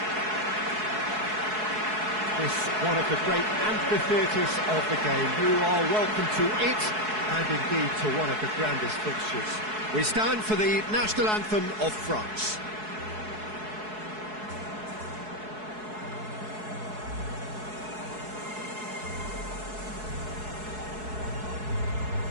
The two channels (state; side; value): late; left; 4.7 ms